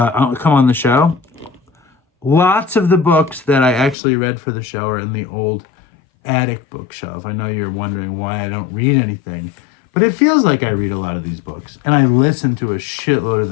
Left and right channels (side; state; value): right; drops out; at 4.0 s